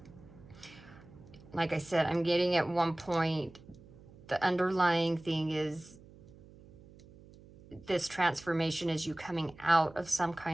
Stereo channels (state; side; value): noise; right; hum, 22 dB below the sound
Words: Like I said, I'm getting at one point, the underlying thing is this transformation is you coming out of some